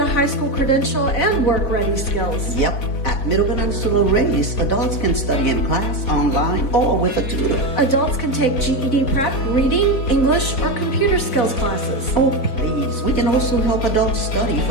high school credential and work-ready skills. Yep. At Middle Peninsula Race, adults can study in class, online, or with a tutor. Adults can take GED prep, reading, English, or computer skills classes. Oh, please. We can also help adults study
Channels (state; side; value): late; right; 3.8 ms